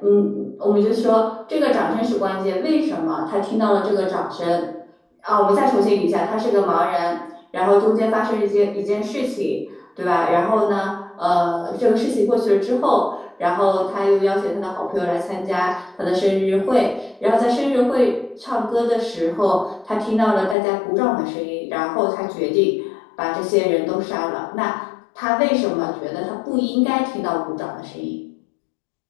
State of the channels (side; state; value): right; drops out; at 20.6 s